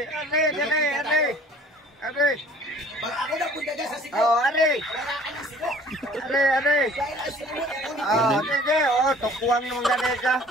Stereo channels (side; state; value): both; normal; correlation 0.51